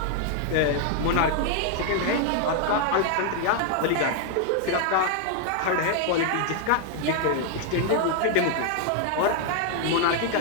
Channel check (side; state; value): both; different; correlation 0.00